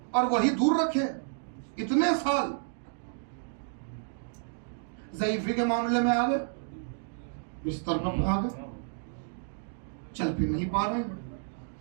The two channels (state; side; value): silent; left; digital silence